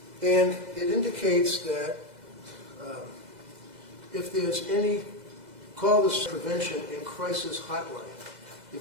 And it indicates that if there's any, call this prevention and crisis hotline.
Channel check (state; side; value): late; left; 2.0 ms